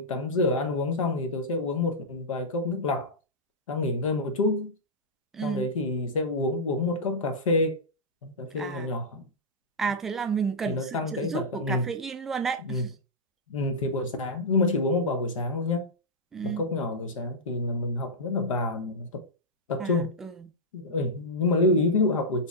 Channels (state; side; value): normal; both; correlation -0.10